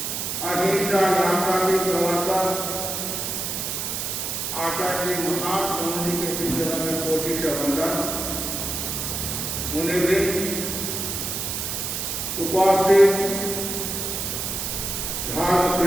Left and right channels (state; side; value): noise; right; hiss, 3 dB below the sound